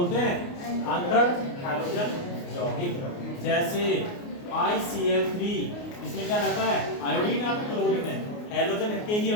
हैं? अंतर हैलोजन यौगिक। जैसे ICl3, इसमें क्या रहता है? आयोडीन और क्लोरीन है, हैलोजन के ही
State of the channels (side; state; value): right; late; 29 ms